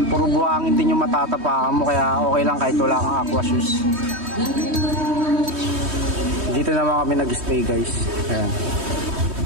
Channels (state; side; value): late; left; 3.2 ms